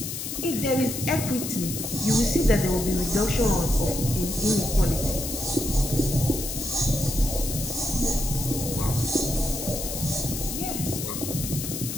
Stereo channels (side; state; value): left; noise; hiss, 5 dB below the sound